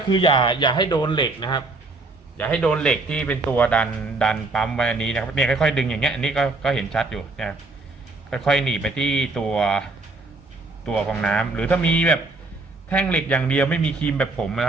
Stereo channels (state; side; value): quieter; left; 3.2 dB